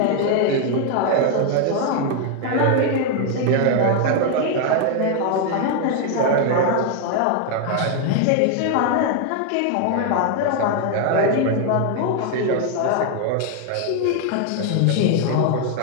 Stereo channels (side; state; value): both; different; correlation 0.00